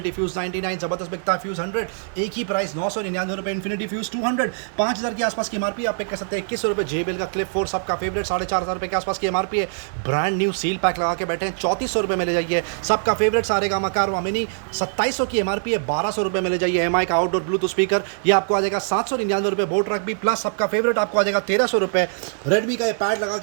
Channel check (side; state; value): left; silent; digital silence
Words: फ्यूज 99 ज़बरदस्त बिकता है। फ्यूज 100 एक ही प्राइस 999 रुपये। इन्फिनिटी फ्यूज 200 5,000 के आसपास की एमआरपी, आप पिक कर सकते हैं 2100 रुपये। JBL का क्लिप 4 सबका फेवरेट 4,500 रुपये के आसपास की एमआरपी है। ब्रांड न्यू सील पैक लगा के बैठे हैं 3400 रुपये में ले जाइए। सबका फेवरेट सारेगामा कारवा मिनी 2700 की एमआरपी है, 1200 रुपये में ले जाइए। MI का आउटडोर ब्लूटूथ स्पीकर ये आपको आ जाएगा 799 रुपये। बोट ट्रक भी प्लस सबका फेवरेट आपको आ जाएगा 1300 रुपये। रेडमी का ये पैड लगा